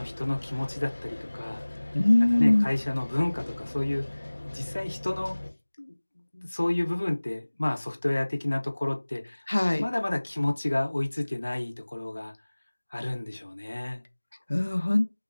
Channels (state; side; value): inverted; both; correlation -1.00